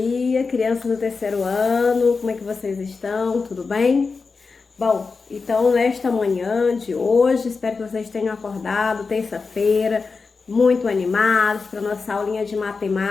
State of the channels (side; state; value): right; quieter; 4.6 dB